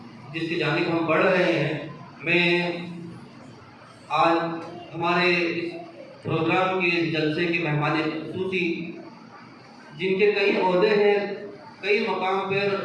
जिसकी जानिब हम बढ़ रहे हैं। मैं आज हमारे प्रोग्राम के जलसे के मेहमान खुसूसी जिनके कई ओहदे हैं, कई मकाम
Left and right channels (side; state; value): both; identical; correlation 1.00